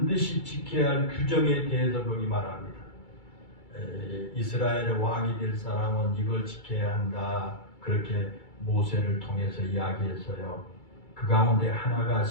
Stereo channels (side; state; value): right; late; 2.3 ms